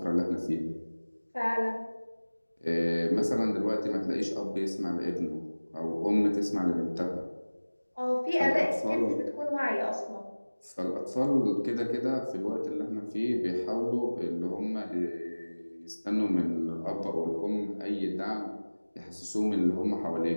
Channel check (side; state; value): both; inverted; correlation -1.00